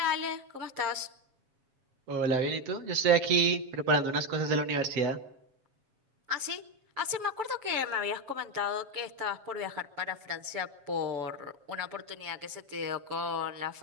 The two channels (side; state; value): left; late; 7.3 ms